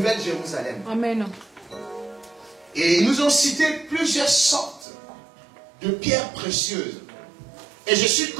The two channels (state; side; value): drops out; left; at 4.9 s